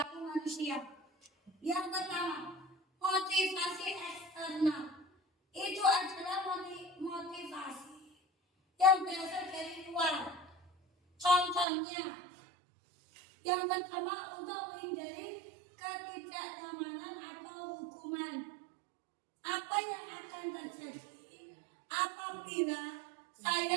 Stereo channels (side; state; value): left; drops out; at 11.7 s